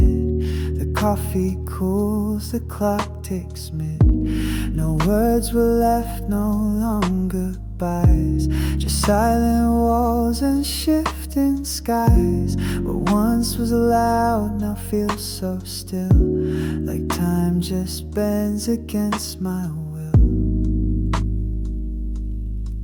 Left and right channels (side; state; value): both; identical; correlation 1.00